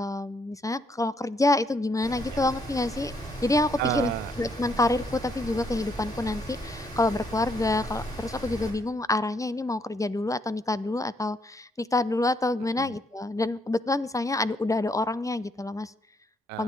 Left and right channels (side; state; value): both; normal; correlation 0.72